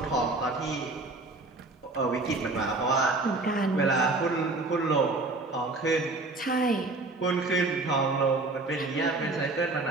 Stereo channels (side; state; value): left; quieter; 3.2 dB